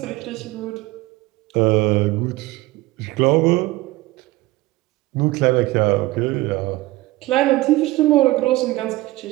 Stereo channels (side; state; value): left; quieter; 18.9 dB